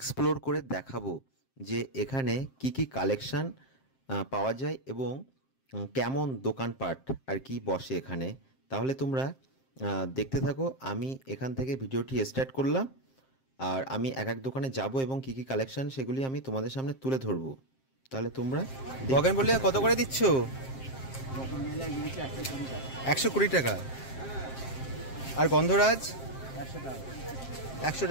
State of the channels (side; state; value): right; late; 7.6 ms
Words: করে দেখাবো, যে এখানে কি কি কালেকশান পাওয়া যায় এবং কেমন দোকানপাট আর কি বসে এখানে। তাহলে তোমরা দেখতে থাকো। আমি এখান থেকে ভিডিওটি স্টার্ট করলাম, আর আমি এক এক দোকানে যাব এবং কি কি কালেকশান সেগুলি আমি তোমাদের সামনে তুলে ধরবো। তাহলে তোমরা বগেন বলিয়া কত করে দিচ্ছ? 120 টাকা। আর গন্ধরাজ 100